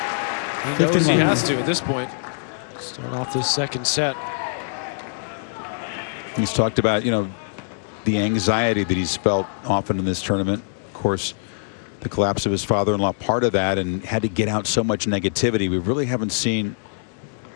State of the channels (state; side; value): silent; right; digital silence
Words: he knows he has to at this point. Start off this second set. He's talked about, you know, the anxiety that he's felt often in this tournament. Of course, the collapse of his father-in-law, part of that, and had to get out so much negativity. We really haven't seen